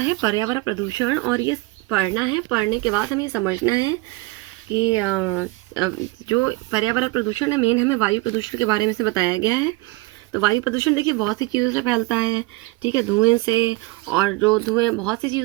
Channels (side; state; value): left; quieter; 23.0 dB